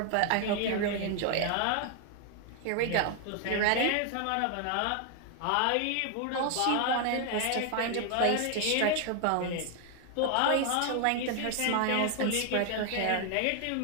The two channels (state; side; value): different; both; correlation 0.00